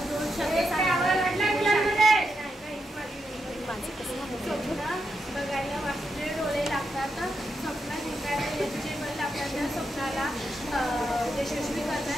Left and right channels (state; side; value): normal; both; correlation 0.83